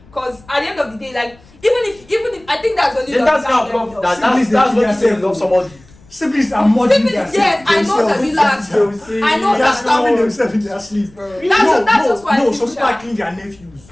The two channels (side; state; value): left; noise; rumble, 26 dB below the sound